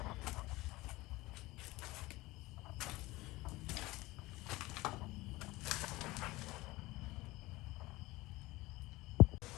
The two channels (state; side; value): quieter; right; 20.1 dB